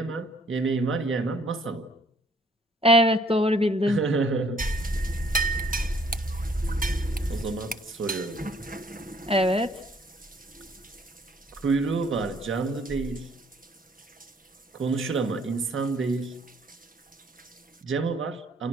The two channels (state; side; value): normal; both; correlation 0.62